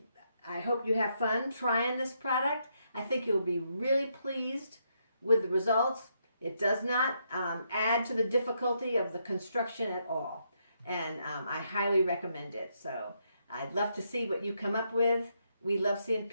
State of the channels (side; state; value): both; inverted; correlation -0.77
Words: I hope you have fun trying this product. I think you'll be really pleased with the results. It does not add to the difficulty of the construction at all, and I highly recommend it. So I'd love to see what you come up with. We love seeing